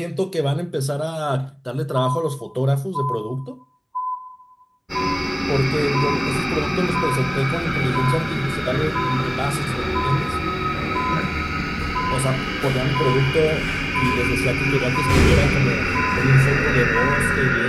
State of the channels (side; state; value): both; identical; correlation 1.00